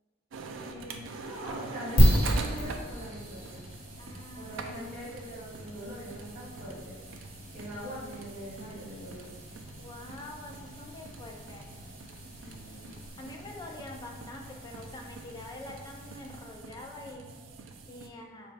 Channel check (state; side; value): normal; both; correlation 0.82